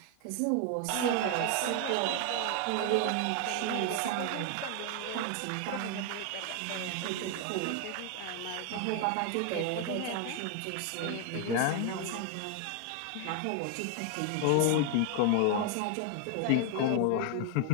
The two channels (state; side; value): different; both; correlation 0.00